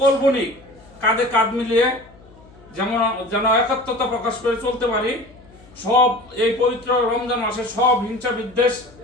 বণিক কাঁধে কাঁধ মিলিয়ে যেন একাত্মতা প্রকাশ করে চলতে পারি। সব এই পবিত্র রমজান মাসে সব হিংসা বিদ্বেষ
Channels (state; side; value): noise; left; hum, 25 dB below the sound